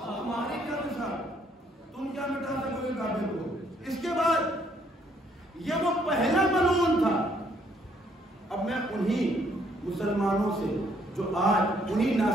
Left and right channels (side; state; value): both; normal; correlation 0.67